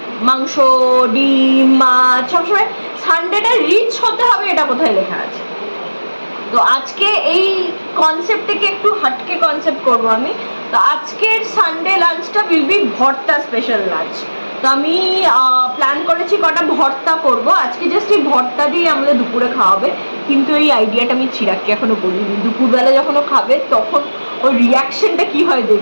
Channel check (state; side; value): inverted; both; correlation -1.00